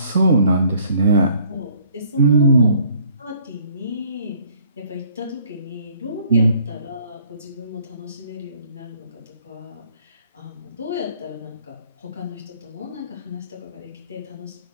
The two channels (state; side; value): inverted; both; correlation -0.60